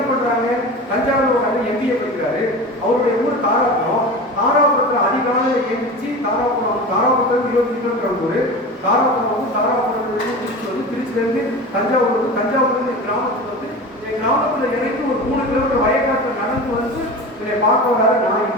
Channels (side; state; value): both; normal; correlation 0.31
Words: பண்றாங்க, தஞ்சாவூர் ஒரு அண்ணன் எம்பிஏ படிக்கிறாரு, அவருடைய ஊர் தாராபுரம். தாராபுரத்தில் அதிகாலையில் எழுந்திரிச்சு தாராபுரத்தில் 20 கிலோமீட்டர் ஊர். தாராபுரத்துலேருந்து திருச்சி வந்து, திருச்சியிலேருந்து தஞ்சாவூர் வந்து, தஞ்சாவூர்லேருந்து என் கிராமத்துக்கு வந்து, என் கிராமத்தில் இறங்கி ஒரு 3 கிலோமீட்டர் வயக்காட்டில் நடந்து வந்து இதை பார்க்க வராது. நான்